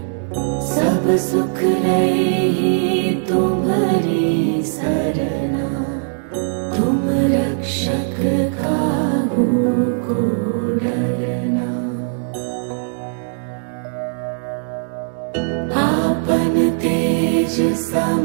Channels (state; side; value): silent; left; digital silence